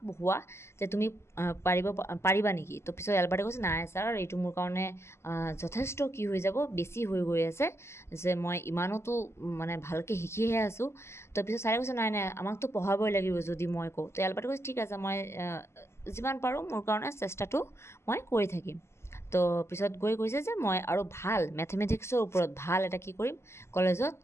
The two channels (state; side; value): late; right; 0.13 ms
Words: পঢ়োৱা যে তুমি পাৰিবা নেকি তো পিছত এলবাৰ্টে কৈছে নাই ছাৰ এইটো মোৰ কাৰণে যথেষ্ট কি হৈ যাব বেছি হৈ গৈ আছে যে মই ইমানতো মানে ভালকৈ শিকিহে আছোঁ তো পিছত ছাৰে কৈছে নাই নাই আমাকতো পঢ়াবই লাগিব যদি মই কওঁ তো এলবাৰ্টে কৈছে ঠিক আছে মই যিমান পাৰোঁ মোৰ কাৰণে চেষ্টাটো মই কৰি থাকিম তো পিছত গৈ কৈছে যে মই আৰু ভাল মেথমেটিক্সৰ ওপৰত ভাল এটা কি কৰিম কলেজত